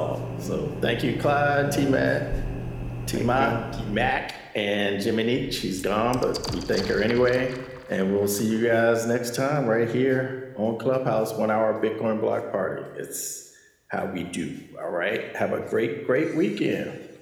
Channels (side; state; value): both; identical; correlation 1.00